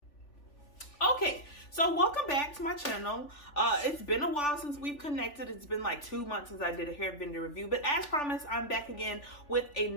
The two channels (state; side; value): late; right; 3.4 ms